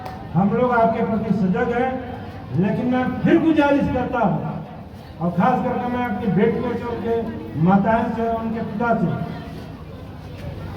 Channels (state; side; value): identical; both; correlation 1.00